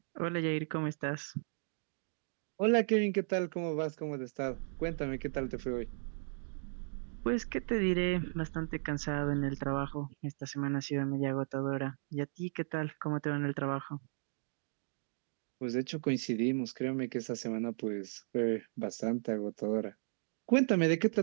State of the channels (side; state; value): left; silent; digital silence